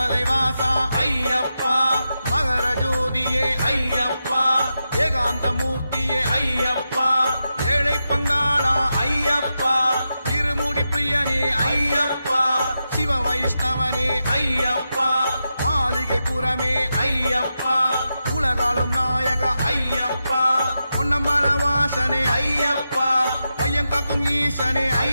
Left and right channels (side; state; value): both; inverted; correlation -0.88